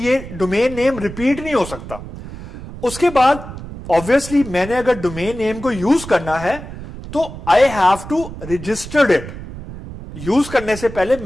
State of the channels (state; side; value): noise; right; rumble, 12 dB below the sound